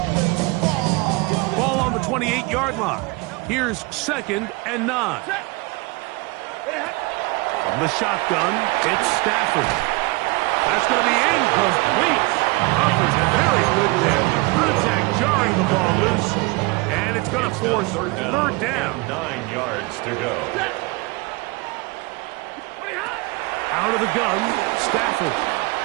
Ball on the 28-yard line. Here's 2nd and 9. From the shotgun, it's Stafford. That's going to be incomplete. Offers very good there. Contact jarring the ball loose. And it's going to force third down. 9 yards to go. Out of the gun, Stafford.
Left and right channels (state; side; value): quieter; left; 25.4 dB